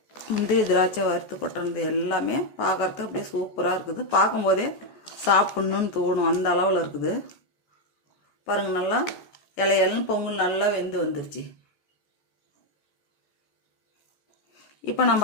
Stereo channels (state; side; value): late; right; 14 ms